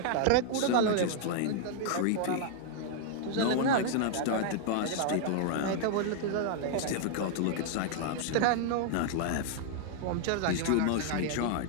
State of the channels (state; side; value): different; both; correlation 0.00